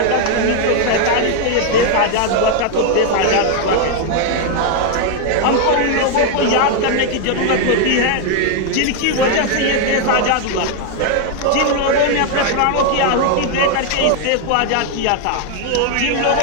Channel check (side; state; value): both; different; correlation 0.00